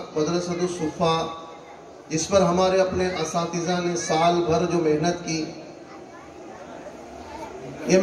مدرسۃ الصفا، جس پر ہمارے اپنے اساتذہ نے سال بھر جو محنت کی، یہ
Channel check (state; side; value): identical; both; correlation 1.00